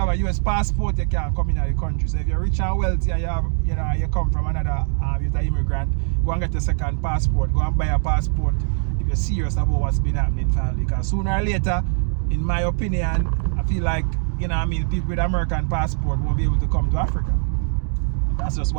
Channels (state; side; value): silent; left; digital silence